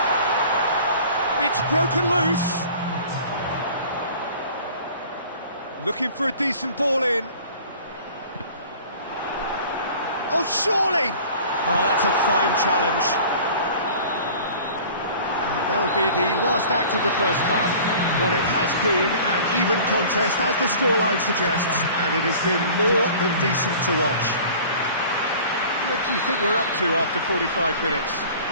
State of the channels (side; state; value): both; inverted; correlation -0.45